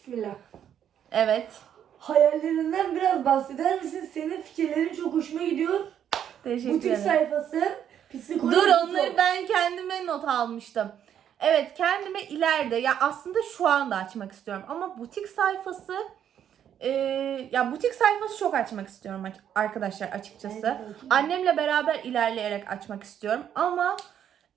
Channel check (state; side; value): quieter; left; 9.5 dB